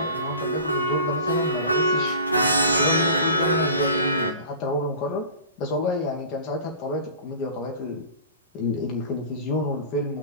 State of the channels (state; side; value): inverted; both; correlation -0.39